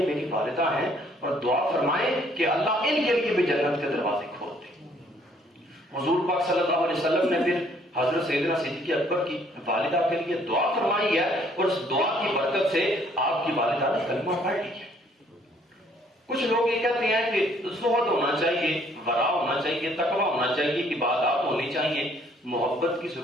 میری والدہ ہیں اور دعا فرمائیں کہ اللہ ان کے لیے بھی جنت کے دروازے کھول دے۔ حضور پاک صلی اللہ علیہ وسلم نے پھر حضرت سیدنا صدیق اکبر کی والدہ کے لیے دعا فرمائی ہے اور اس دعا کی برکت سے آپ کی والدہ نے کلمہ پڑھ لیا۔ کچھ لوگ یہ کہتے ہیں کہ زہد ہونا چاہیے، ورع ہونا چاہیے، تقوی ہونا چاہیے، عبادات ہونی چاہیے، محبت کی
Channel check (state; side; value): normal; both; correlation 0.63